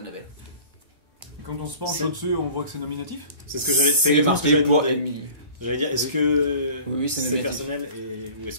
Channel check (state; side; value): late; left; 1.1 ms